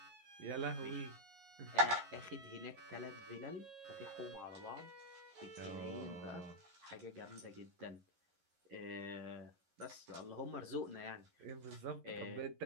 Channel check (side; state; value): left; late; 11 ms